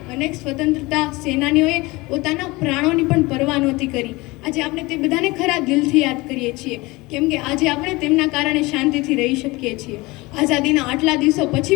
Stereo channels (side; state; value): right; quieter; 22.5 dB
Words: અનેક સ્વતંત્રતા સેનાનીઓએ પોતાના પ્રાણોની પણ પરવા નહોતી કરી। આજે આપણે તે બધાને ખરા દિલથી યાદ કરીએ છીએ, કેમ કે આજે આપણે તેમના કારણે શાંતિથી રહી શકીએ છીએ। આઝાદીના આટલા દિવસો